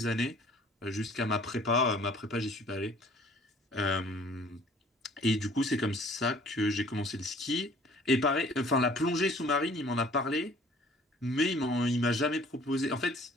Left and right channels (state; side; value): normal; both; correlation 0.53